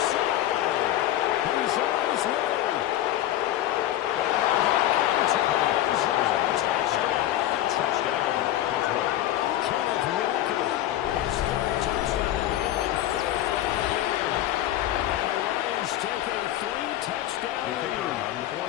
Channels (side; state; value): right; quieter; 13.3 dB